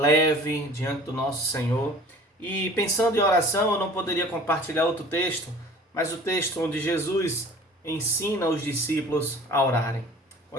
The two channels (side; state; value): both; normal; correlation 0.46